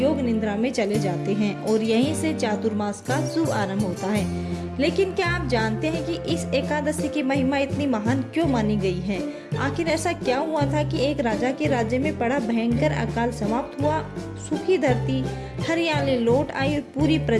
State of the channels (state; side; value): identical; both; correlation 1.00